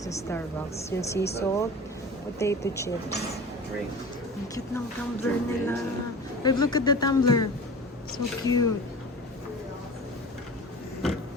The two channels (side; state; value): both; normal; correlation 0.37